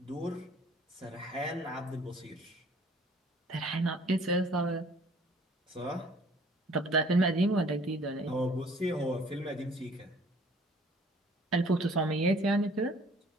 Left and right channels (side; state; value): both; normal; correlation 0.55